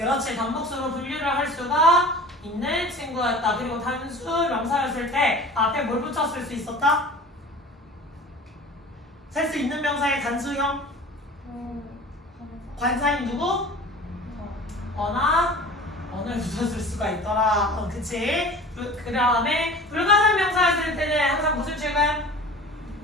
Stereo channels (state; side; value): normal; both; correlation 0.40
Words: 단복수로 분류를 할 수가 있는 친구였다. 그리고 단수 명사였을 때 앞에 뭘 붙였을 수 있었다? 셀 수 있는 명사의 단수형 관사인 누구? 언을 붙였을 수가 있더라. 그치? 그 다음에 불가산 명사였을 때는 항상 무슨 취급?